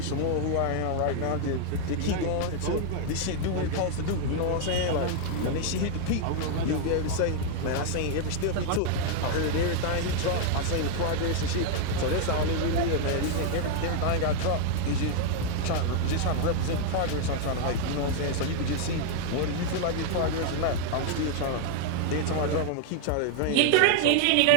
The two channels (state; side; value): different; both; correlation 0.00